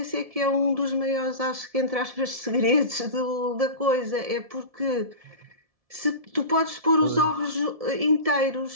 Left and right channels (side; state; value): left; late; 1.7 ms